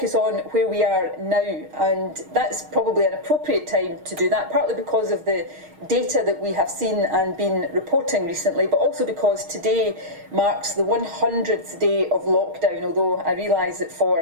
on where we are now, and that's probably an appropriate time to do that, partly because of the data that we have seen and been reporting recently, but also because today marks the 100th day of lockdown, although I realise that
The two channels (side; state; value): left; late; 6.4 ms